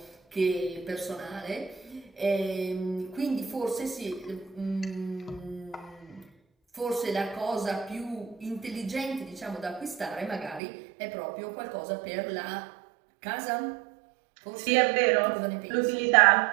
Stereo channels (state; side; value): drops out; left; at 10.6 s